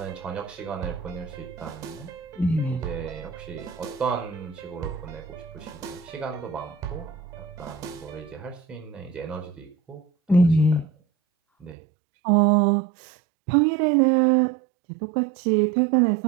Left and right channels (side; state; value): left; drops out; at 11.8 s